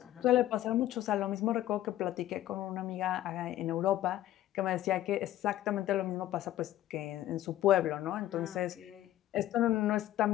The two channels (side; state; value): right; quieter; 13.8 dB